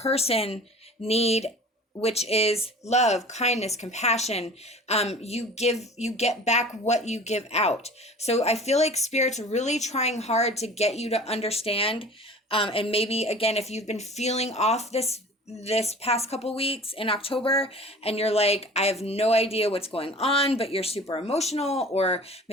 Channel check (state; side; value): normal; both; correlation 0.42